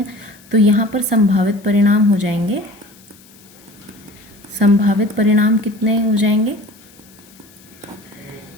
तो यहाँ पर संभावित परिणाम हो जाएंगे, संभावित परिणाम कितने हो जाएंगे?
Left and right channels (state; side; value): noise; left; hiss, 26 dB below the sound